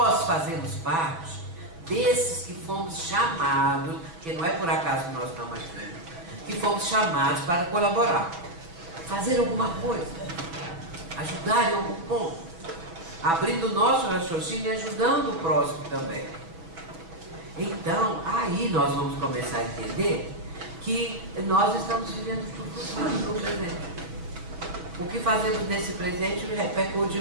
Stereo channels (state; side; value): late; left; 6.0 ms